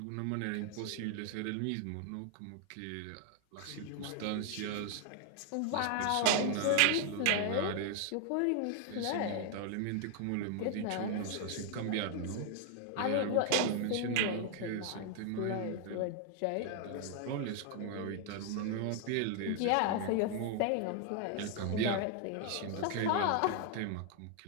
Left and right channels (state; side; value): different; both; correlation 0.00